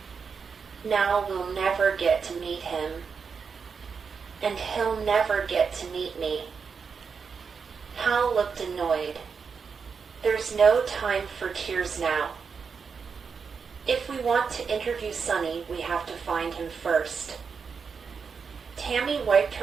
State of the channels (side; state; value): left; quieter; 5.8 dB